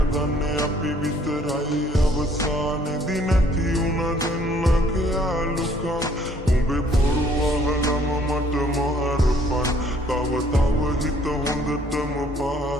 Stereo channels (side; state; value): both; normal; correlation 0.61